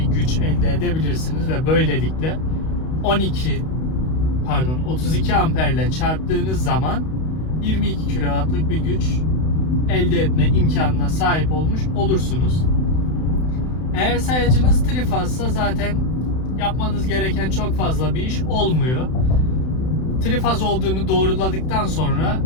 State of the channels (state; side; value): late; right; 32 ms